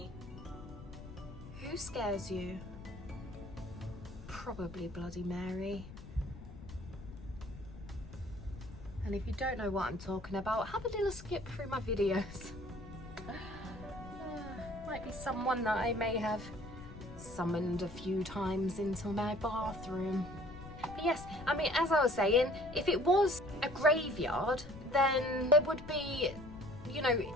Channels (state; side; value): noise; left; rumble, 14 dB below the sound